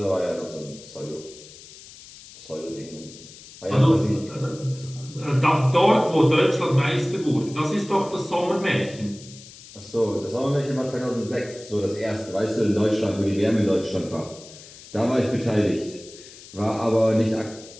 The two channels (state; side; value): noise; left; hiss, 19 dB below the sound